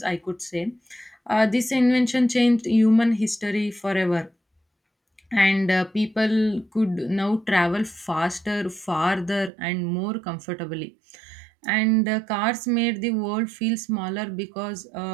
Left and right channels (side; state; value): left; drops out; at 9.5 s